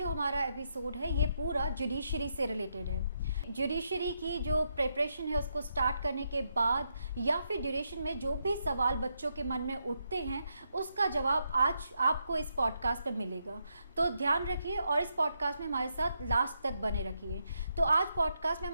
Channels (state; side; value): inverted; both; correlation -0.81